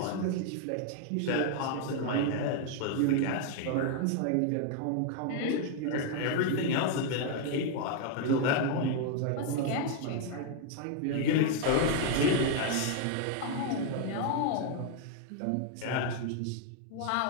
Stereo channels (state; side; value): different; both; correlation 0.00